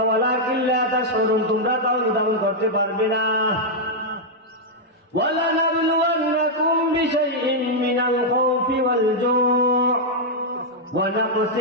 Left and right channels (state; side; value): normal; both; correlation -0.04